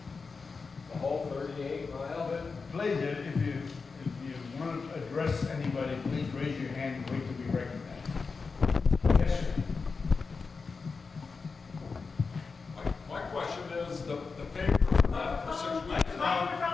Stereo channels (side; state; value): right; quieter; 4.7 dB